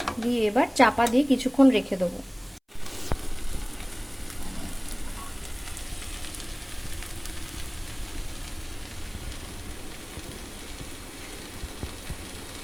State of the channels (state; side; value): identical; both; correlation 1.00